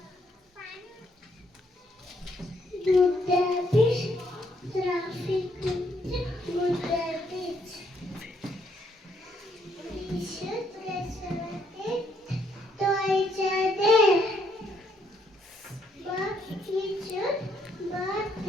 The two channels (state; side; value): normal; both; correlation 0.71